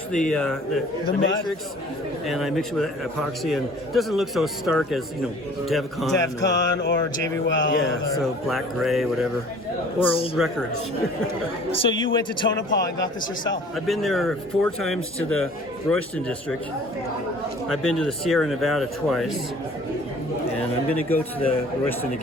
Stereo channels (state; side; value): normal; both; correlation 0.49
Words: the mud? matrix, and I mix it with epoxy, and it doesn't look so stark as Devcon. or JB Weld. Yeah, so black, gray, whatever, or old records. So you went to Tonopah and got this yourself? I've been there 4 times to the Royston district. I've been to the Sierra Nevada twice, and I'm going to go to the Royston